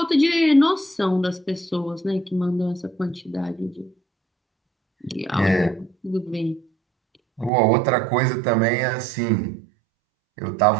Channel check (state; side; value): drops out; left; at 7.5 s